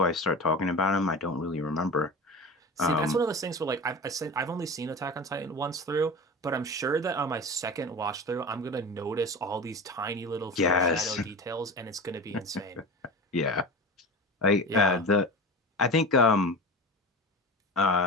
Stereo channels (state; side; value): normal; both; correlation 0.30